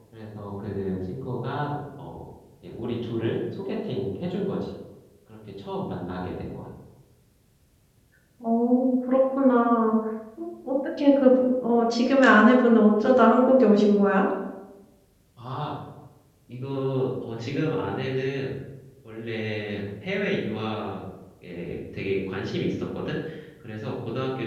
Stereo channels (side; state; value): both; identical; correlation 1.00